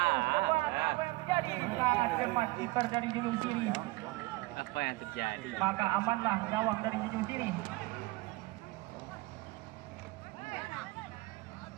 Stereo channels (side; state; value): left; quieter; 21.9 dB